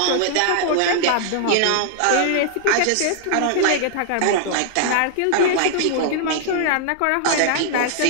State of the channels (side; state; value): both; different; correlation -0.01